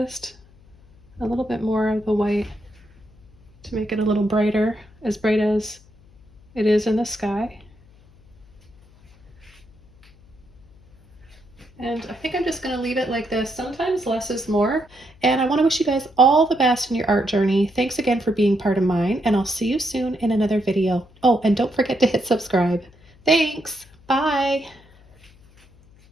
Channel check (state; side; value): noise; left; hum, 27 dB below the sound